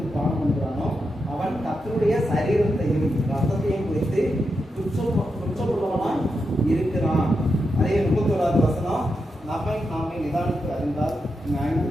பானம் பண்ணுகிறானோ அவன் கர்த்தருடைய சரீரத்தையும் ரத்தத்தையும் குறித்து குற்றமுள்ளவனாய் இருக்கிறான். அதே 31வது வசனம், நாமே நிதானித்து அறிந்தால் நியாயம்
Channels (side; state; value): both; normal; correlation 0.86